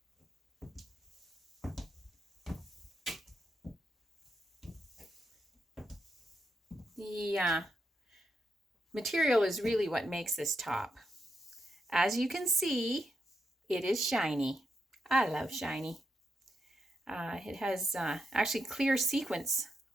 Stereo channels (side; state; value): both; normal; correlation 0.83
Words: The material is really what makes this top. As you can see, it is shiny. I love shiny. It has actually clear sequins